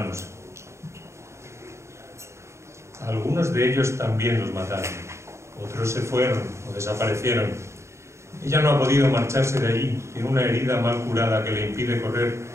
A algunos de ellos también los mataron, otros se fueron o desaparecieron. Ella no ha podido marcharse de allí, tiene una herida mal curada que le impide correr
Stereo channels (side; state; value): left; late; 0.14 ms